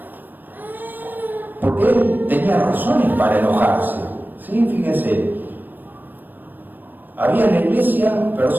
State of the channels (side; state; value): left; late; 0.090 ms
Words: Porque él tenía razones para enojarse. ¿Sí? Fíjense, había en la iglesia